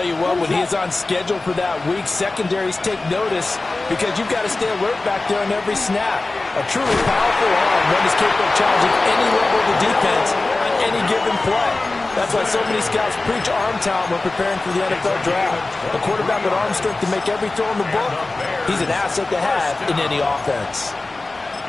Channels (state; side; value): quieter; right; 3.2 dB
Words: you what, when he is on schedule for that week, secondaries take notice because you've got to stay alert back there on every snap. A truly powerful arm, one is capable of challenging any level of the defense on any given play. That's why so many scouts preach arm talent when preparing for the NFL draft. A quarterback with arm strength to make every throw in the book, he's an asset to have in any offense.